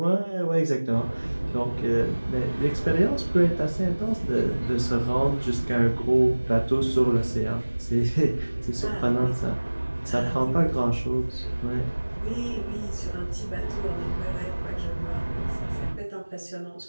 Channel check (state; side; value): inverted; both; correlation -1.00